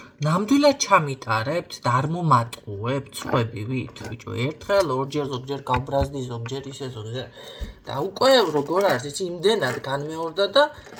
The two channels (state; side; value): identical; both; correlation 1.00